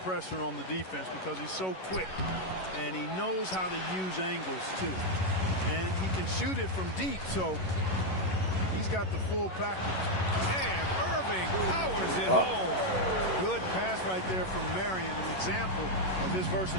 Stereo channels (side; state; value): right; late; 11 ms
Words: on the defense because he's so quick. And he knows how to use angles, too. And he can shoot it from deep, so he's got the full package. And Irving powers it home. Good pass right there from Marion, an example of his